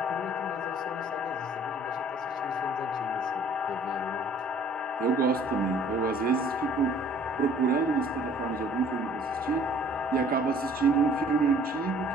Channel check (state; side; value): normal; both; correlation 0.54